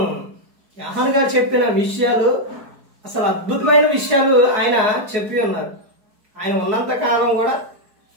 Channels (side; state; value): left; late; 4.7 ms